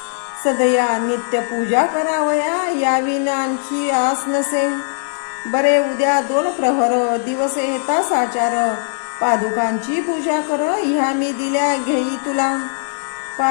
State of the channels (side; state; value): right; silent; digital silence